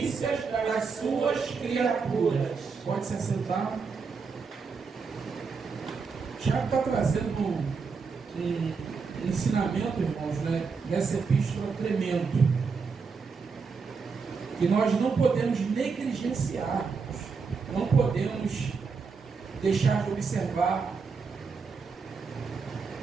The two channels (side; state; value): left; quieter; 5.1 dB